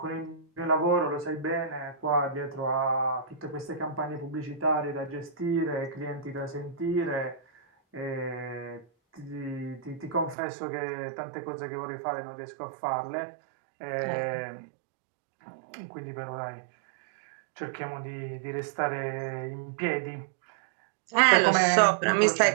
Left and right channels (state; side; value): drops out; left; at 10.4 s